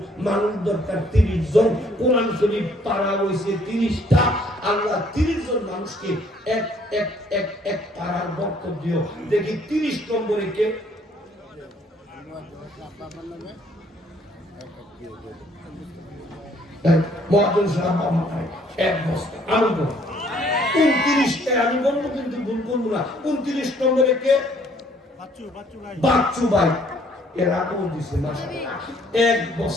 মানুষ দরকার 30 জন। কোরআন শরীফ পারা হইছে 30টা। আল্লাহ 30 জন মানুষকে এক এক এক এক পারার বরকত দিও। দেখি 30 নম্বরে কে? মহাজন সাহেব আমায় 1 বস্তা আমি বলবো 29টা আমি বলবো, কিন্তু ভুল করবো না। 29 নম্বরে কে? বাচ্চু ভাই। এরা কোন দিছে মাশাআল্লাহ 1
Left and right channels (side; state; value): both; normal; correlation 0.62